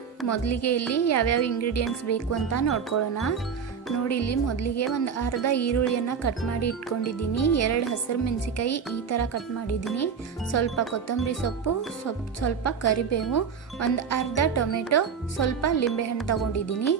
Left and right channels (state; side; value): quieter; left; 6.5 dB